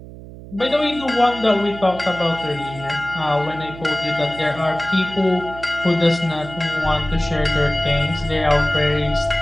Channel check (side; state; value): right; noise; hum, 15 dB below the sound